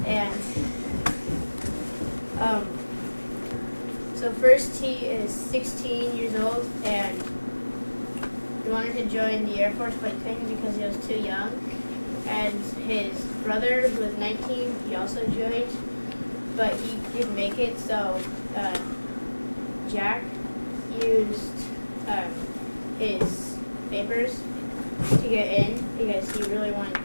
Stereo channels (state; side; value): inverted; both; correlation -1.00